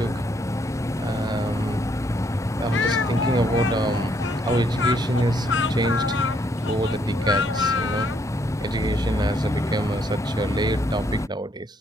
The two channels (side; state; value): both; normal; correlation 0.71